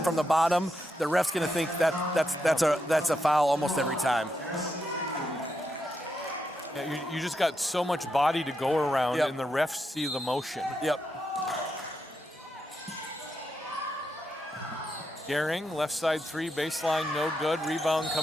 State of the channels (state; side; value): normal; both; correlation 0.83